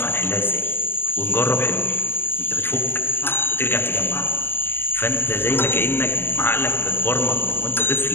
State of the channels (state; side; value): late; right; 0.11 ms